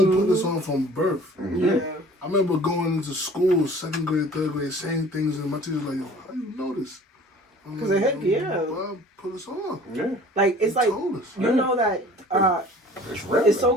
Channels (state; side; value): normal; both; correlation 0.48